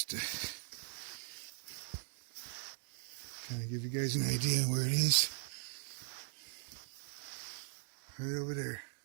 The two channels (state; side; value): silent; left; digital silence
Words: Trying to give you guys an idea where it is. Right over there.